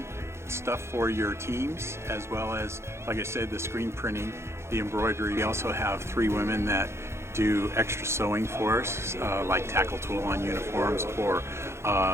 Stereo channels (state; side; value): late; left; 0.13 ms